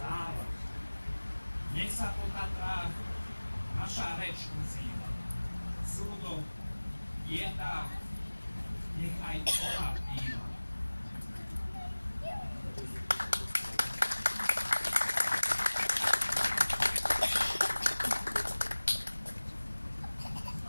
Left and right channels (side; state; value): both; inverted; correlation -1.00